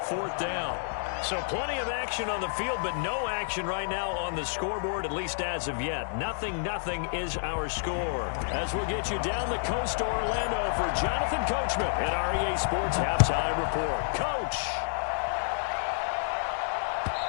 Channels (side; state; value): right; silent; digital silence